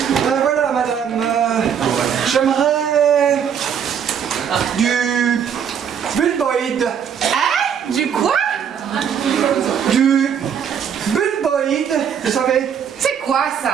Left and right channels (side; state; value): left; quieter; 7.9 dB